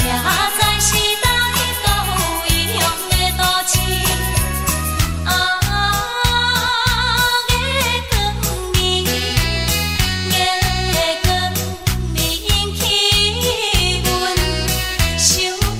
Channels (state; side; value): identical; both; correlation 1.00